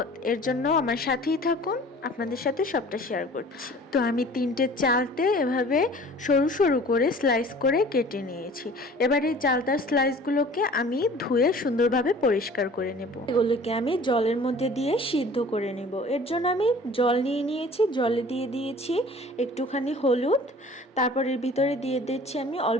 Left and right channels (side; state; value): both; normal; correlation 0.47